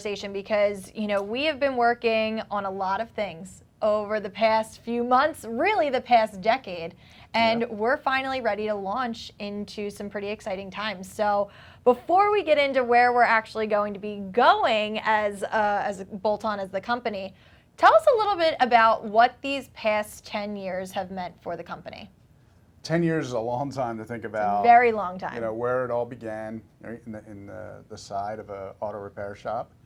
because, we have been working on a lot of things over the past few months, really the past decade, and we're finally ready to launch into some pretty exciting times. So before we get into where we're actually going to be going as Bolt-On as the company, tell us a little bit about what these past 10 years have meant for the company. 10 years is a long time to think about. Very long time. Where it all began, right, in the side of an auto repair shop,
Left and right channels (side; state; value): both; identical; correlation 1.00